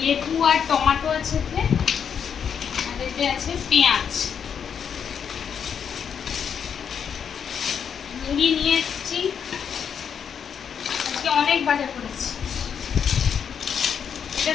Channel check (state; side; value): quieter; right; 7.5 dB